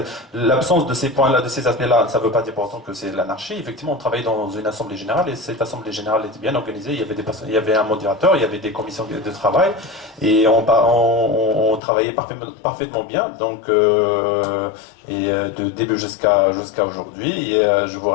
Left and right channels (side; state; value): right; drops out; at 11.8 s